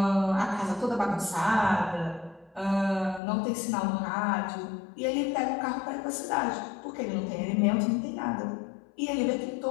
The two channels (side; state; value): right; drops out; at 3.2 s